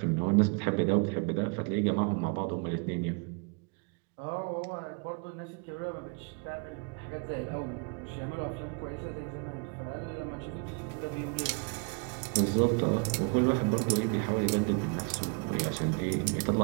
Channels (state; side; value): quieter; left; 35.1 dB